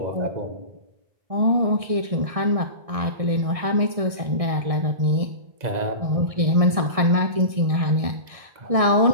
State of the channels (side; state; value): left; late; 1.6 ms